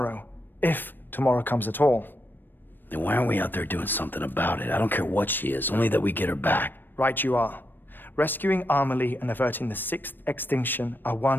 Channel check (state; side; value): late; right; 0.093 ms